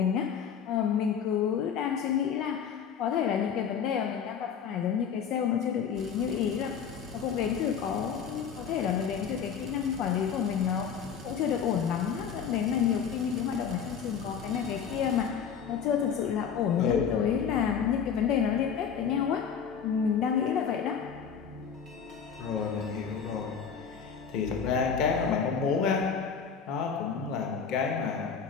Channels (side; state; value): right; quieter; 7.1 dB